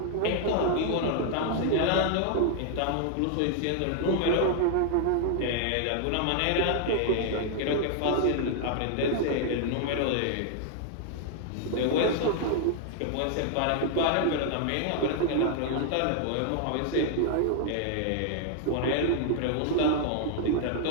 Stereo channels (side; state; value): both; different; correlation 0.00